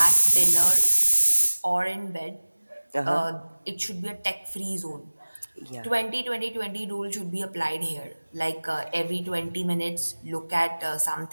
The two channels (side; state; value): both; inverted; correlation -1.00